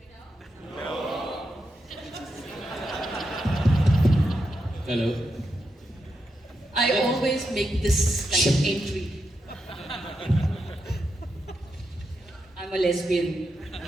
now? Hello. I always make this kind of entry. I'm a lesbian.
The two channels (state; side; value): normal; both; correlation 0.85